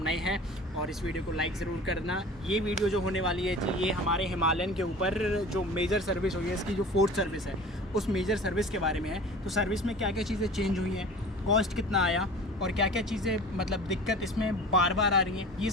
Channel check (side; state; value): both; normal; correlation 0.40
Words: हैं, और इस वीडियो को लाइक ज़रूर करना। ये वीडियो जो होने वाली है जी, ये हमारे हिमालयन के ऊपर जो मेजर सर्विस हुई है, इसकी जो फोर्थ सर्विस है, उस मेजर सर्विस के बारे में है। तो सर्विस में क्या क्या चीज़ें चेंज हुई हैं, कॉस्ट कितना आया, और क्या क्या चीज़ें मतलब दिक्कत इसमें बार बार आ रही हैं, ये